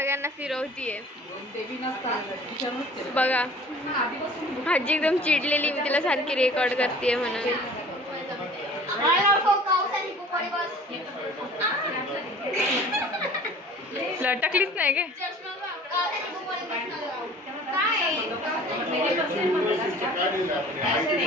फिरवतीये बघा. आजी एकदम चिडलेली. मी तिला सारखी रेकॉर्ड करते म्हणून. लटकलीच नाही गे.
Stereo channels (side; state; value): both; normal; correlation 0.47